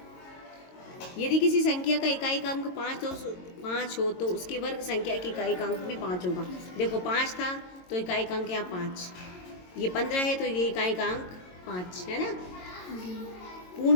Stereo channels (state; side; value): late; right; 22 ms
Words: यदि किसी संख्या का इकाई का अंक 5 हो तो उसकी वर्ग संख्या की इकाई का अंक भी 5 होगा। देखो 5 था तो इकाई का अंक यहाँ 5, ये 15 है तो ये इकाई का अंक 5 है ना।